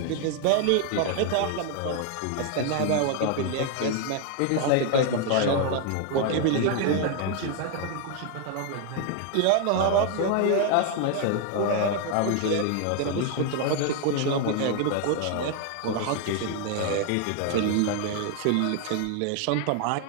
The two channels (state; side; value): different; both; correlation 0.00